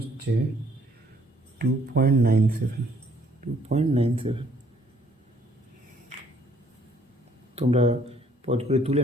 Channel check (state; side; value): normal; both; correlation 0.63